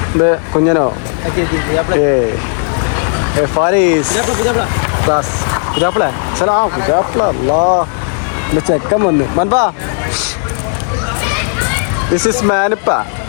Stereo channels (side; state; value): right; silent; 56 dB below the other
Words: ഇത് കുഞ്ഞനോ? ഫാരീസ് ചെക്കൻ വന്ന് മൻപാ. This is മാനിപ്പ.